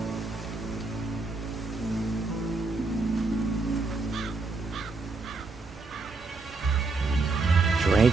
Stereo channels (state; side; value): quieter; left; 3.7 dB